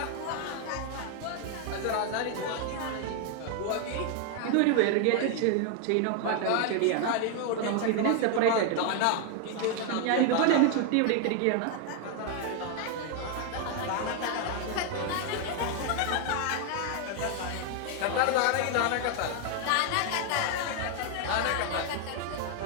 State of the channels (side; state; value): both; different; correlation 0.00